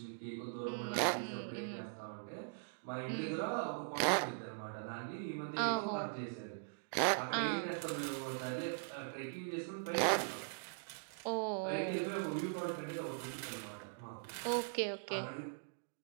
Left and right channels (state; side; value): silent; left; digital silence